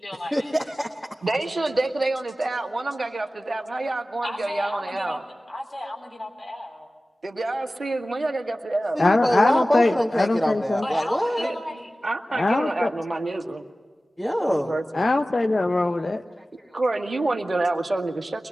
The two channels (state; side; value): normal; both; correlation 0.96